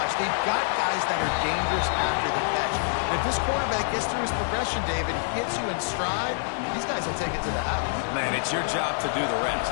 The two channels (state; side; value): silent; right; digital silence